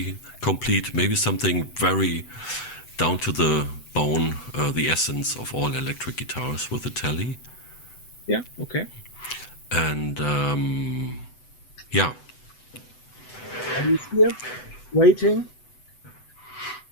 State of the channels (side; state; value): right; late; 8.0 ms